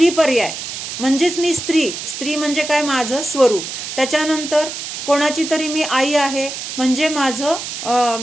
पर्याय, म्हणजेच मी स्त्री म्हणजे काय? माझं स्वरूप. त्याच्यानंतर कोणाची तरी मी आई आहे म्हणजे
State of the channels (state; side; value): noise; right; hiss, 7 dB below the sound